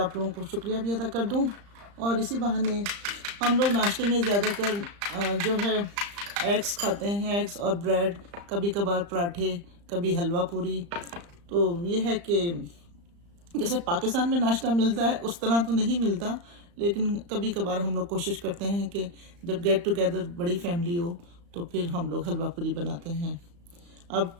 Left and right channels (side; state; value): left; late; 35 ms